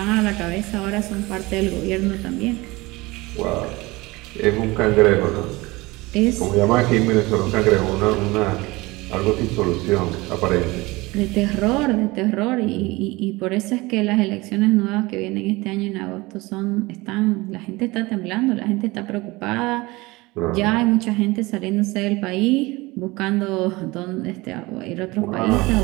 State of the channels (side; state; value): left; quieter; 22.1 dB